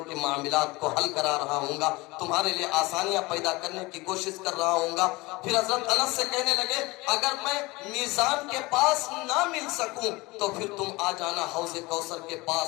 کے معاملات کو حل کرا رہا ہوں گا، تمہارے لئے آسانیاں پیدا کرنے کی کوشش کر رہا ہوں گا۔ پھر حضرت انس سے کہنے لگے اگر میں میزان کے پاس نہ مل سکوں تو پھر تم آ جانا حوض کوثر کے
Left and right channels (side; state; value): right; quieter; 22.6 dB